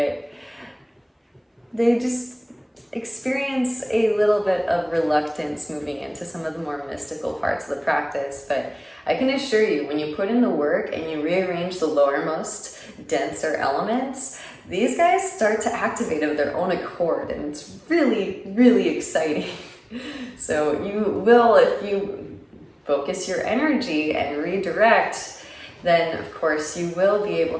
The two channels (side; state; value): both; identical; correlation 1.00